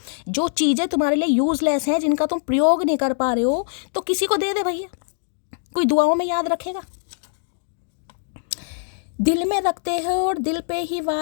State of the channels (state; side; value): silent; right; digital silence